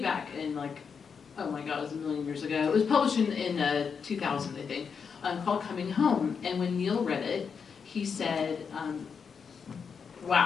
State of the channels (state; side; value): quieter; right; 6.2 dB